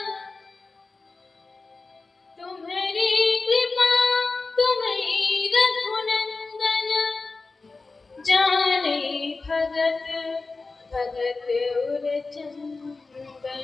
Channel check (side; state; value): right; quieter; 3.8 dB